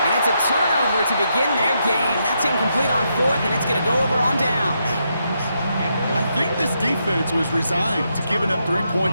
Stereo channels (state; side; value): inverted; both; correlation -0.80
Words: And it's a turnover to begin their game. That's incomplete on 4th, and it's going to go over on downs. I think this defense was resigned to giving up 3